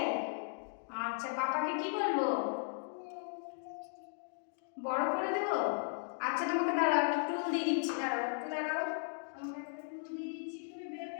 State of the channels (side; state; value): right; silent; digital silence